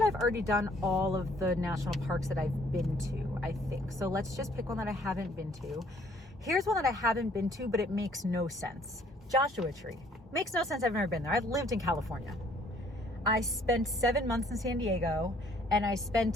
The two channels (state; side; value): normal; both; correlation 0.61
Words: I've already done all of the national parks that I've been to, I think. So let's just pick one that I haven't been to. Here's one that I haven't been to, but it makes no sense. Joshua Tree. Makes no sense. I've never been there. I've lived in California. I spent 7 months in San Diego, and I